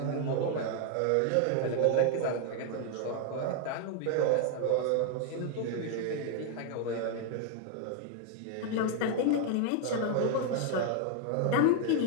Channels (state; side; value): different; both; correlation 0.00